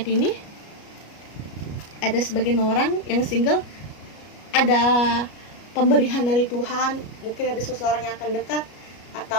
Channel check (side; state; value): right; late; 33 ms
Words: ini ada sebagian orang yang single, ada pemberian dari Tuhan, mungkin ada seseorang yang akan dekat